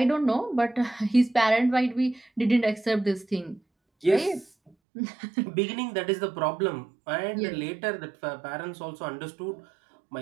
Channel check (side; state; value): left; drops out; at 4.7 s